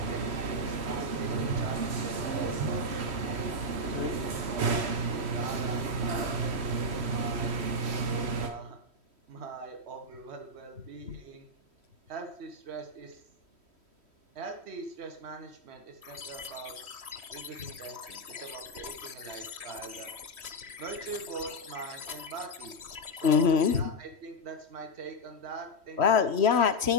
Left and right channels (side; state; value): left; late; 3.1 ms